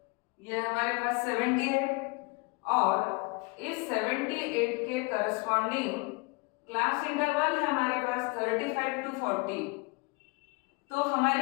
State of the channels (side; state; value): right; quieter; 28.3 dB